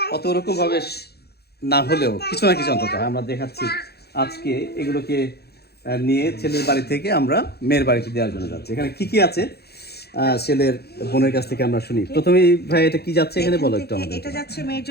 অত রকমভাবে না হলেও কিছু না কিছু অন্তত আমরা দেখাচ্ছি। আজকে এগুলোকে নিয়ে ছেলের বাড়ি থেকে আমরা মেয়ের বাড়িতে দেওয়ার জন্য যাচ্ছি। এখানে কি কি আছে ছেলের বোনের কাছ থেকে আমরা শুনি। প্রথমেই ভাই এটা কি যাচ্ছে এখানে বলো একটু আমাদের। এটা যাচ্ছে মেয়ের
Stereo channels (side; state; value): right; late; 0.47 ms